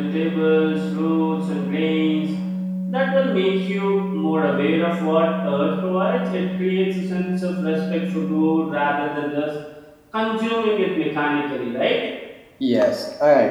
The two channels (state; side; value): identical; both; correlation 1.00